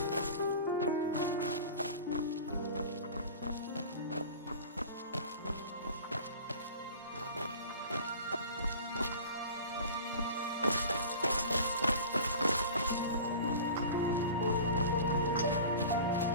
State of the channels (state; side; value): inverted; both; correlation -0.39